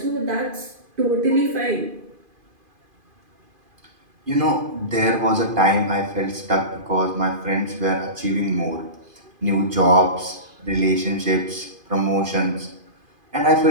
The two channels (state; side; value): late; left; 2.5 ms